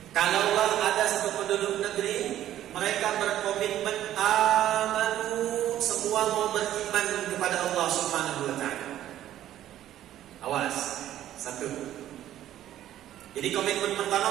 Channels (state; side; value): quieter; left; 12.4 dB